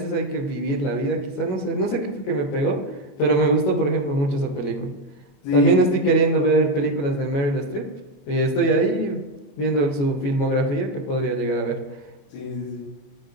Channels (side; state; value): right; late; 21 ms